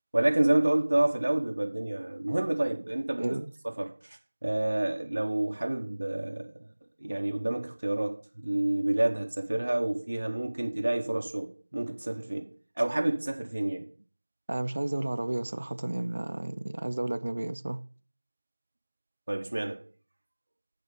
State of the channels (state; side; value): inverted; both; correlation -1.00